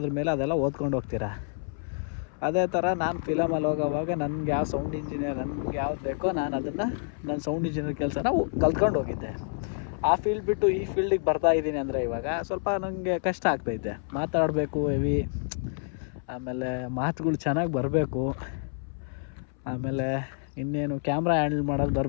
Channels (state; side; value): silent; right; 59 dB below the other